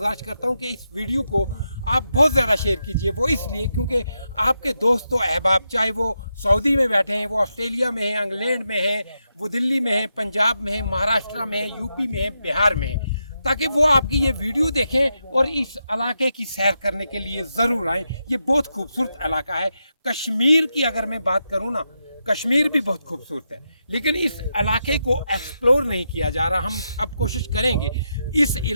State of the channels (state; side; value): inverted; both; correlation -0.85